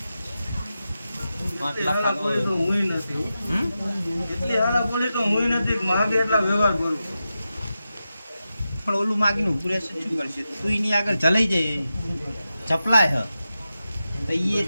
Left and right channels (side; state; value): both; inverted; correlation -0.91